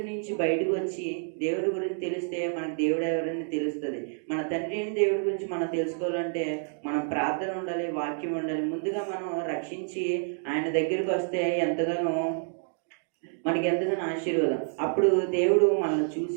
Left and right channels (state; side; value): silent; left; 59 dB below the other